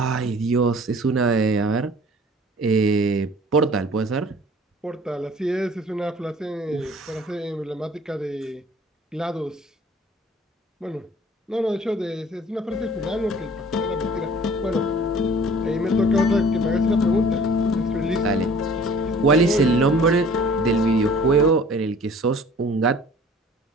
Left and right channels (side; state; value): both; normal; correlation 0.50